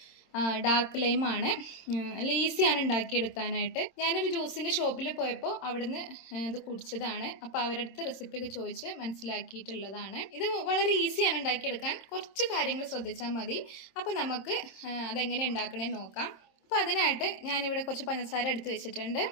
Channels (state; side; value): late; right; 26 ms